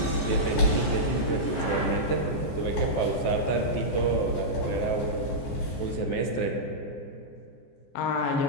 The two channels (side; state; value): right; late; 14 ms